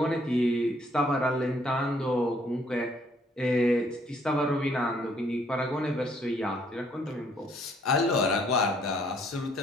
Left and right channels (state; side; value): normal; both; correlation 0.65